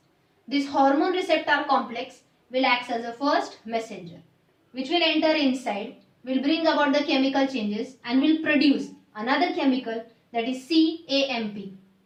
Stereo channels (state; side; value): identical; both; correlation 1.00